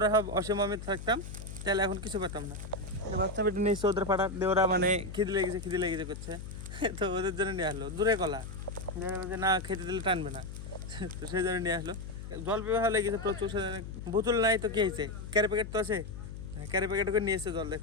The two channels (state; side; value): noise; left; hum, 9 dB below the sound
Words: সব অসীম অমিত থাকতাম তাহলে এখন কিছু পেতাম না। বাচ্চা পেটে নিয়েছে, ওদের পাড়ার দিয়ে ওরা মানে খিদে লেগেছে করছে, তো ওদের জন্য নিয়ে আসলো দূরে কলা, না খেতে দিলে টানবে না। তো সেই জন্য নিয়ে আসলো। জল পেয়ে ভালো লেগেছে প্রচুর, বোতল নাই তো কি হয়েছে, ক্যারি প্যাকেট তো আছে, ক্যারি প্যাকেট করে নিয়ে এসছে জল।